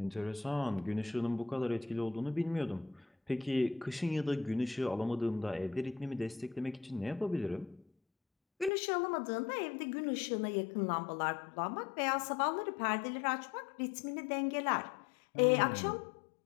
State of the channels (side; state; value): right; drops out; at 8.7 s